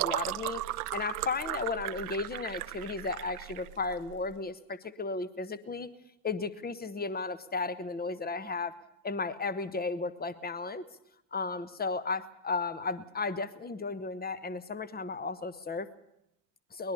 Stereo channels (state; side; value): normal; both; correlation -0.12